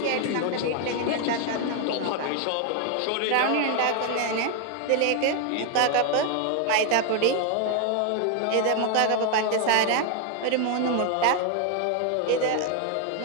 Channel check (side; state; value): both; different; correlation 0.00